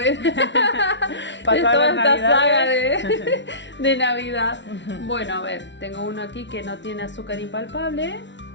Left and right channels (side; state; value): right; late; 0.52 ms